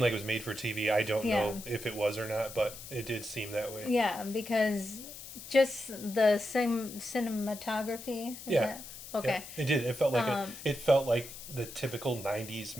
like it was made for TV. I don't know if it was or not, but it did seem that way. Yeah, because just the same cinematography. Okay. Yeah, it did. It felt like the typical 90s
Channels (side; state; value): left; noise; hiss, 13 dB below the sound